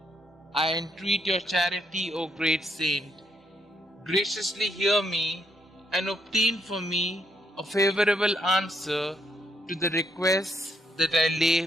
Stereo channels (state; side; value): normal; both; correlation 0.74